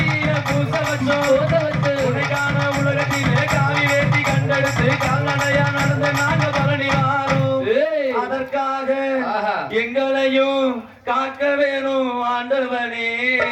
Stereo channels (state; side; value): identical; both; correlation 1.00